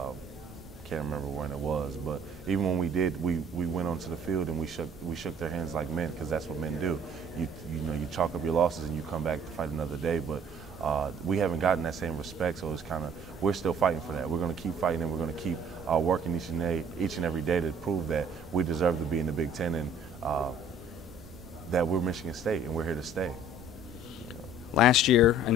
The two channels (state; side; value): normal; both; correlation 0.55